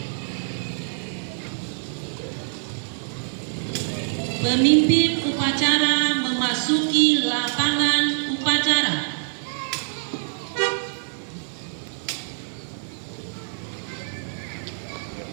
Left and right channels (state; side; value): silent; left; 62 dB below the other